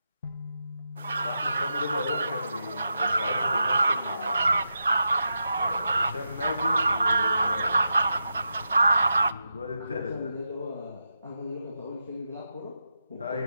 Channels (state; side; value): inverted; both; correlation -0.88